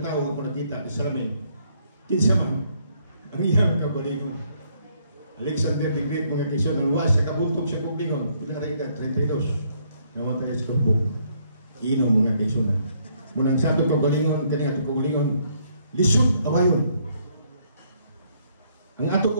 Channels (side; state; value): both; inverted; correlation -0.69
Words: ako nakita sa Salamin. Kinsa man, ang iyang kabalingon. Alexander the Great mga kisyon, ang luwas sa kabuntog sa kublingon. Pinakarika, 32. Namatay sa kubog. Ino mga kisyon. Munang santo kabalingon, kanyang ato kabalingon, lisod, awayon. Ang ato